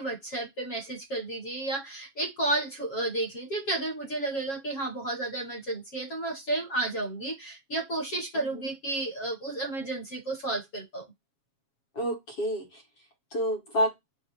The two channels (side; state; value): right; late; 7.3 ms